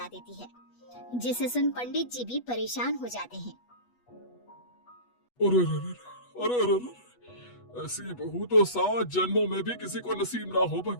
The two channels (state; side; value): late; right; 8.2 ms